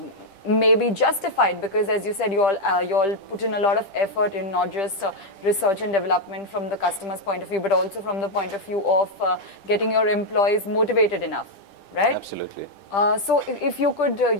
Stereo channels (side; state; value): right; late; 10 ms